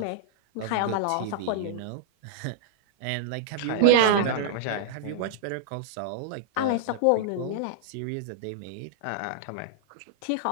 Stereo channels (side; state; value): both; different; correlation -0.01